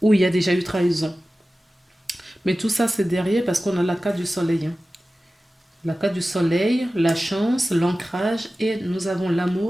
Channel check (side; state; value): both; normal; correlation 0.95